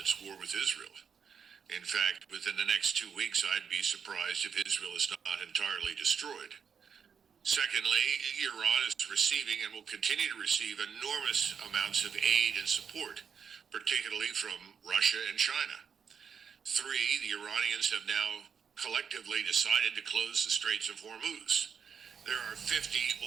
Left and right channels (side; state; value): left; quieter; 6.8 dB